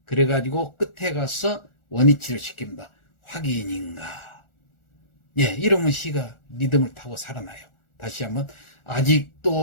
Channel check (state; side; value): late; right; 1.4 ms